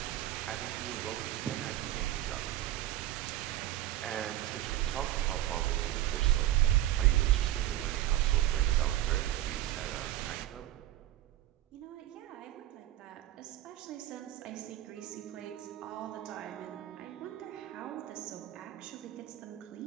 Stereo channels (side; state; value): left; quieter; 13.9 dB